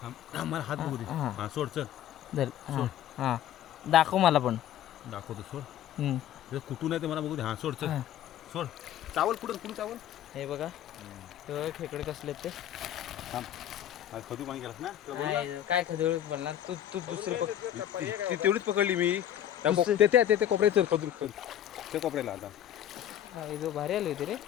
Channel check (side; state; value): right; quieter; 11.1 dB